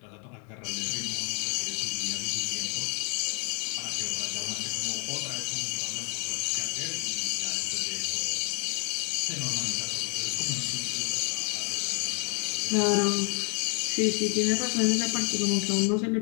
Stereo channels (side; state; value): right; quieter; 39.1 dB